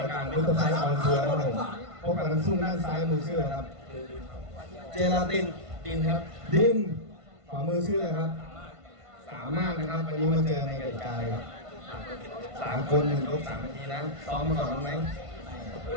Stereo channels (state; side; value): late; left; 1.5 ms